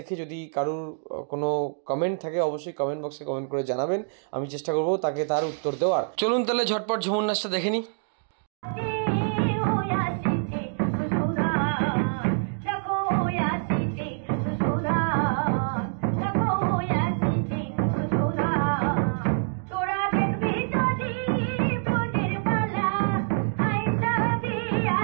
যদি কারোর কোনো কমেন্ট থাকে অবশ্যই কমেন্ট বক্সে কমেন্ট করে জানাবেন, আমি চেষ্টা করবো তাকে তার উত্তর দেওয়ার। চলুন তাহলে ঝটপট ঝুমুর নাচটা দেখে নিই।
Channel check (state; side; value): silent; left; digital silence